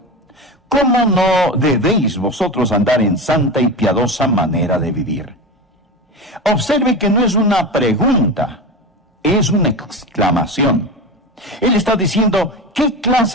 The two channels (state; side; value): normal; both; correlation 0.24